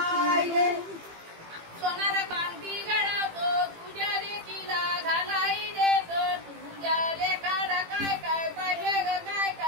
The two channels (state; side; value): late; left; 18 ms